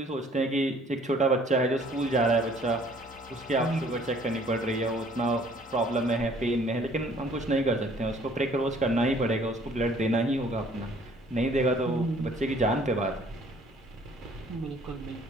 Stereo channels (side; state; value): both; normal; correlation 0.57